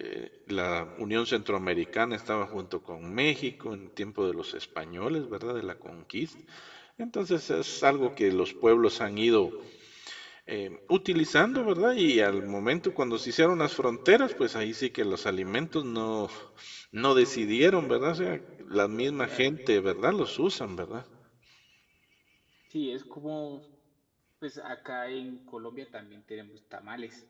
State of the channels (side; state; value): both; identical; correlation 1.00